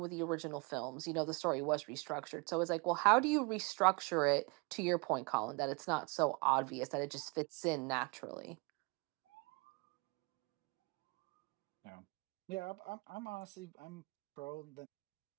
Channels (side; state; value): left; quieter; 30.4 dB